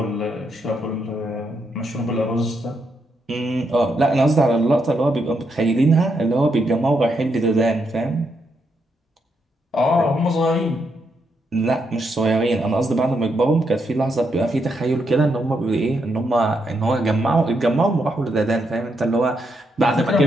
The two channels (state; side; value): normal; both; correlation 0.80